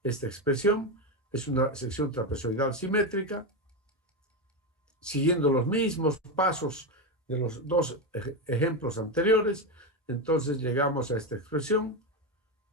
esta expresión, es una sección trapezoidal simétrica, siguiendo los mismos pasos de los dos ejemplos anteriores. Entonces llegamos a esta expresión,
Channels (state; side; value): normal; both; correlation 0.13